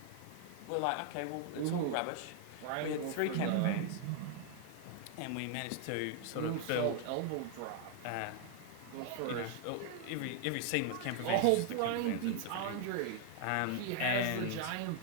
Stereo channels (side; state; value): both; different; correlation 0.00